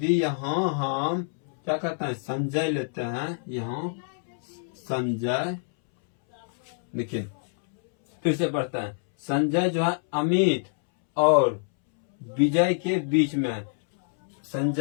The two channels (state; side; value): silent; right; 61 dB below the other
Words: यहाँ हम क्या कहते हैं संजय लेते हैं, यहाँ संजय, देखिए फिर से पढ़ते हैं, संजय जो है अमित और विजय के बीच में है।